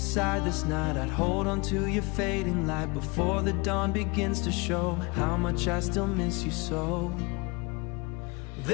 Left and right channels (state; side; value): quieter; right; 27.7 dB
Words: this night, I'd hold on to your fading light before the dawn begins to show how much I still miss you so.